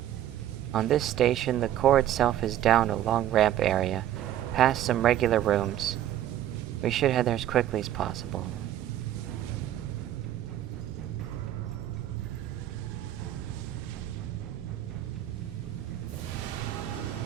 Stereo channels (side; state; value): left; quieter; 12.1 dB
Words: On this station, the core itself is down a long ramp area, past some regular rooms. We should head there as quickly as possible.